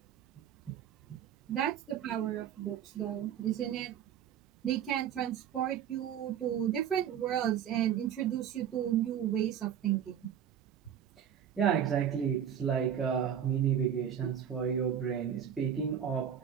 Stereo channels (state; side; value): quieter; left; 9.2 dB